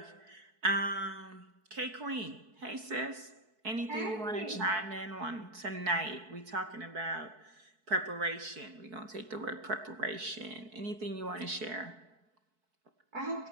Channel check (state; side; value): late; left; 4.6 ms